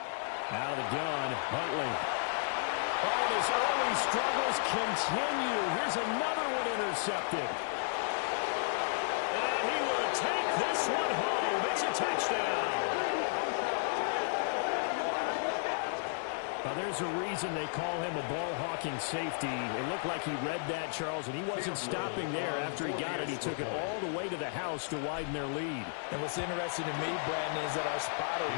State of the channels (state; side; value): silent; right; 56 dB below the other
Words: Out of the gun, Huntley. Oh, and his early struggles continue. Here's another one intercepted. And he will take this one home. It's a touchdown. Now, there's a reason they call him a ball-hawking safety. It looked like he read that, Charles, and he wasn't stopping there. After he got it, he took it all the way to the house to widen their lead. And what's interesting to me, Brandon, is that our spotter,